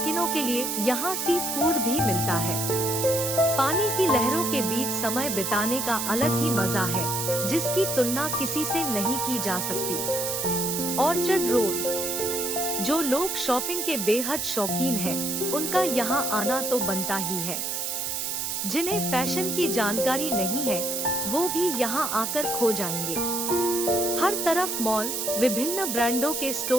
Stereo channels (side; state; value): right; noise; hiss, 2 dB below the sound